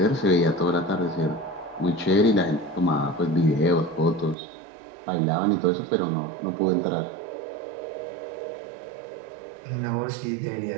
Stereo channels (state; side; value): drops out; left; at 4.4 s